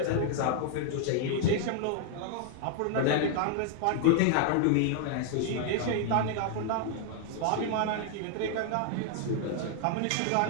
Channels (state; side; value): different; both; correlation 0.00